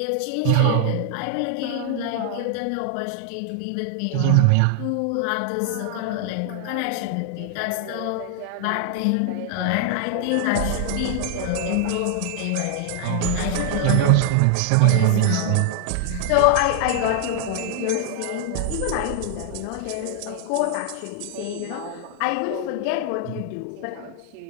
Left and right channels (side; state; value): both; different; correlation 0.00